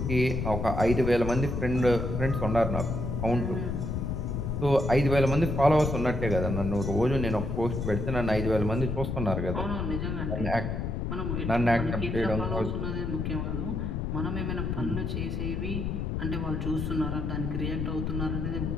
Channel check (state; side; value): noise; left; rumble, 2 dB below the sound